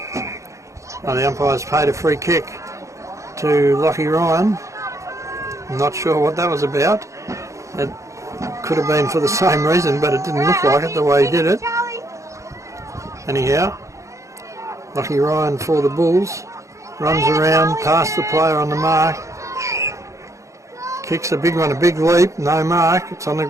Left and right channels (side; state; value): left; late; 0.15 ms